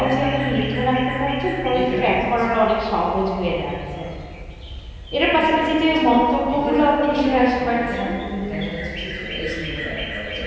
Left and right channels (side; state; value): both; identical; correlation 1.00